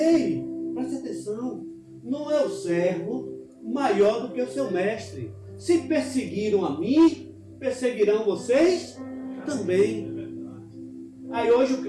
preste atenção, não é o servo maior do que o seu mestre. Se perseguiram a mim, perseguirão vocês também. Aí hoje o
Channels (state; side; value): identical; both; correlation 1.00